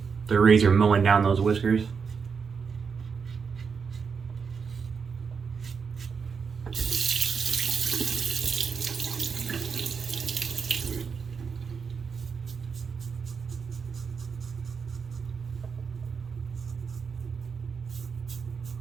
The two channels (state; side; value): quieter; left; 5.8 dB